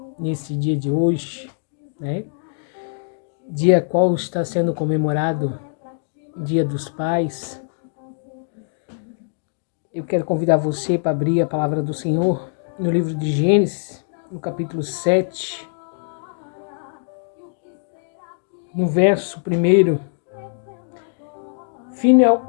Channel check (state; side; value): silent; right; digital silence